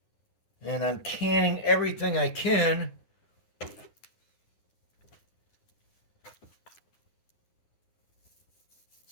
And I'm canning everything I can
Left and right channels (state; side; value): late; right; 9.7 ms